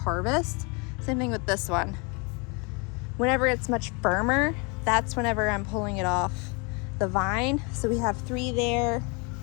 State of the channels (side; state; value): right; quieter; 31.2 dB